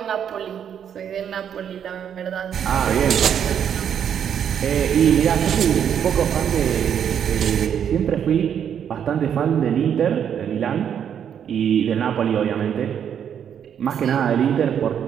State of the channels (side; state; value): left; quieter; 8.6 dB